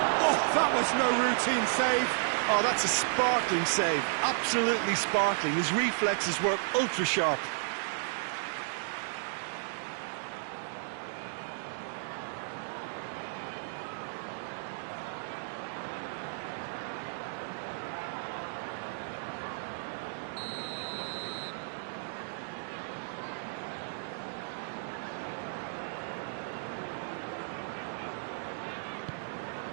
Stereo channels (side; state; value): left; silent; digital silence